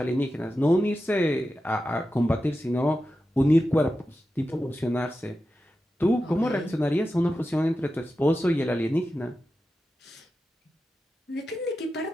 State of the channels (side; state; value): both; normal; correlation 0.91